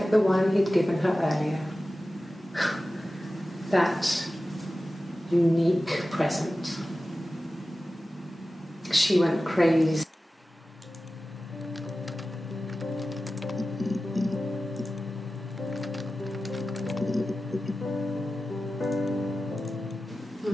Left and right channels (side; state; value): both; normal; correlation 0.94